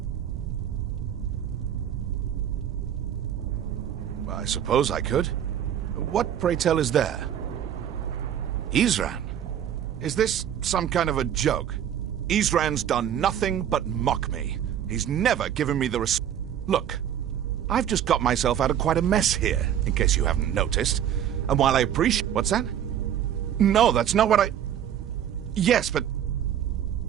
I suppose I could. What, pray tell, is there? Isran? Is this some kind of a joke? Isran's done nothing but mock me. He's never given me the Look, I've just got myself out of quite a mess here, in case you haven't noticed. And while I appreciate... What's that? No, that's not what I... Yes, but...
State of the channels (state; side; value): quieter; left; 9.8 dB